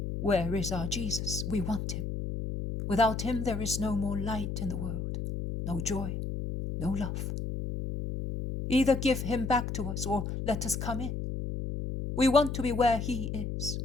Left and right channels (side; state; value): left; noise; hum, 4 dB below the sound